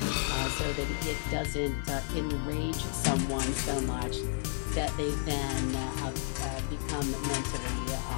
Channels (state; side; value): silent; right; digital silence